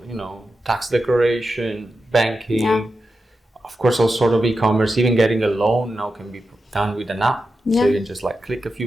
tax declaration, banking, of course all sort of e-commerce, even getting a loan now can be done with an app. So you can just like click a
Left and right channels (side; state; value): both; normal; correlation 0.90